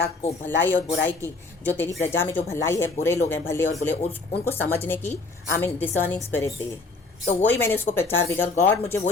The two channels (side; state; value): right; quieter; 3.6 dB